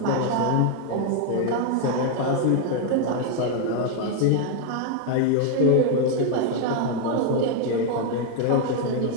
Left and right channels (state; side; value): different; both; correlation 0.00